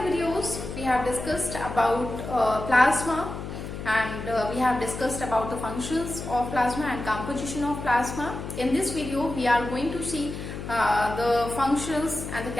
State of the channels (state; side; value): noise; left; hum, 8 dB below the sound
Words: videos we have discussed about plasma and we have discussed about the functions of plasma and composition of plasma. In this video we are going to see the functions and the